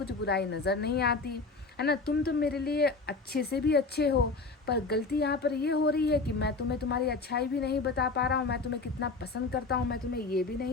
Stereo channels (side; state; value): right; quieter; 4.0 dB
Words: बुराई नज़र नहीं आती, है ना, तुम तो मेरे लिए अच्छे से भी अच्छे हो, पर गलती यहाँ पर ये हो रही है कि मैं तुम्हें तुम्हारी अच्छाई भी नहीं बता पा रहा हूँ, मैं तुम्हें कितना पसंद करता हूँ मैं तुम्हें ये भी